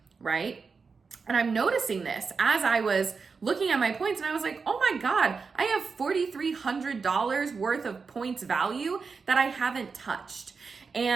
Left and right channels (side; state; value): left; quieter; 5.0 dB